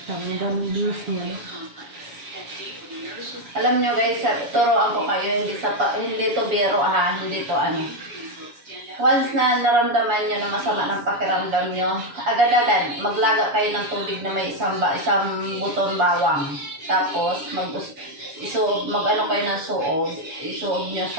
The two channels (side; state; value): left; late; 7.0 ms